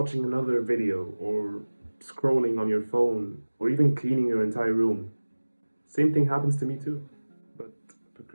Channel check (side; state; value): both; inverted; correlation -1.00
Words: another video or scrolling on your phone or even cleaning your entire room? Same thing happens to me too. But